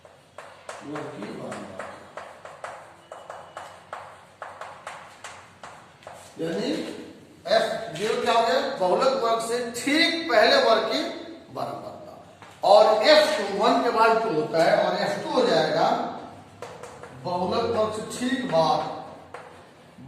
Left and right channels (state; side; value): identical; both; correlation 1.00